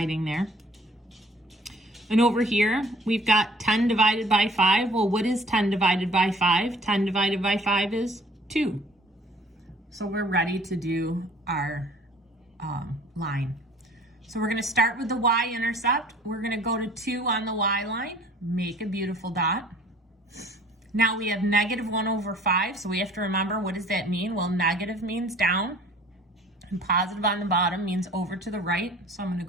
there. And over here, we've got 10 divided by 5. Well, what is 10 divided by 5? 10 divided by 5 is 2. So we're ready to do our line. So we're going to start with the y-intercept. We're going to go to 2 on the y line, make a beautiful dot. Now we have negative 1 over 5, so we have to remember, what does that mean? Well, negative means down, and positive on the bottom means over to the right. So I'm going to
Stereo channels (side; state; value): both; normal; correlation 0.52